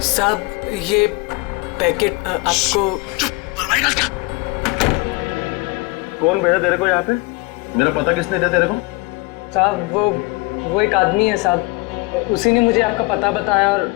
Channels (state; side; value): quieter; right; 24.6 dB